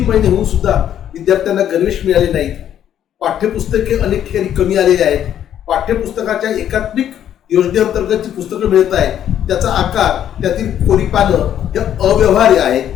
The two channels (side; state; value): right; quieter; 10.4 dB